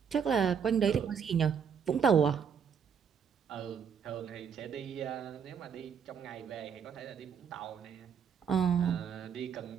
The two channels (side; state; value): left; quieter; 7.1 dB